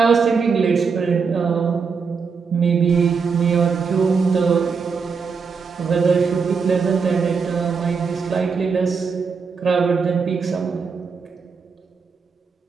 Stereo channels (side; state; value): left; quieter; 5.4 dB